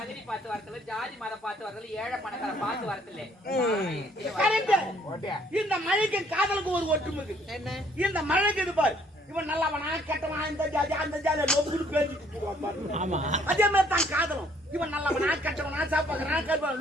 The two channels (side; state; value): both; normal; correlation 0.63